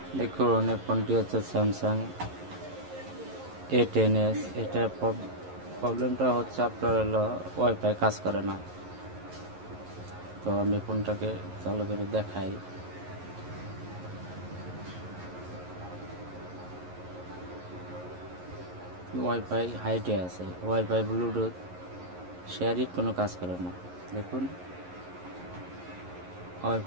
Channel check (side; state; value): left; late; 11 ms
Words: দেখুন এই ফোনটি হচ্ছে স্যামসাং A10s। এটার প্রবলেমটা হচ্ছে আপনার হলো ওয়াইফাই কাজ করে না। তো আমি ফোনটাকে চালু করে দেখাই। ওয়াইফাই হাইটে আছে, ওয়াইফাই ব্লুটুথ শেয়ারিট কোনো কাজ করে না। দেখুন